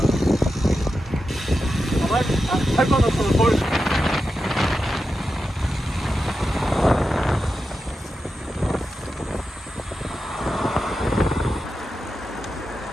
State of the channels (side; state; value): both; normal; correlation 0.90